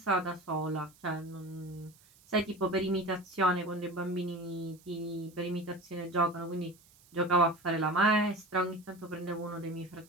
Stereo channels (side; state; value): right; noise; hiss, 27 dB below the sound